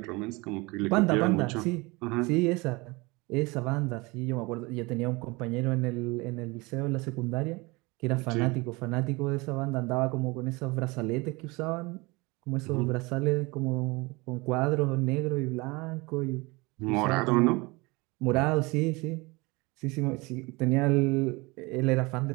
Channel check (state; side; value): quieter; left; 24.8 dB